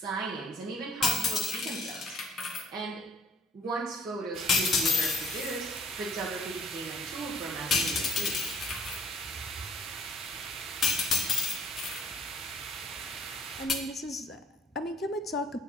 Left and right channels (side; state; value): both; normal; correlation 0.58